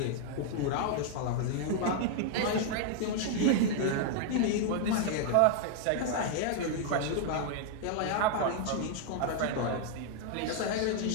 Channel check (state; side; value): different; both; correlation 0.00